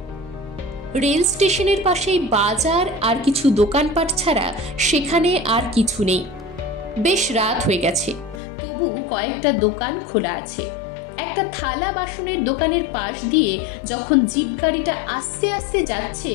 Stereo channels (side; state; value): right; drops out; at 8.4 s